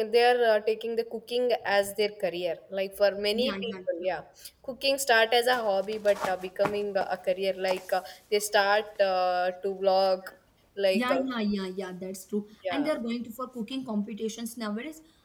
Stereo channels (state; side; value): identical; both; correlation 1.00